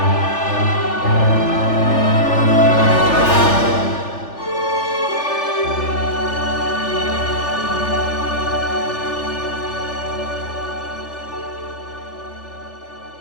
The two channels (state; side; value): late; right; 3.4 ms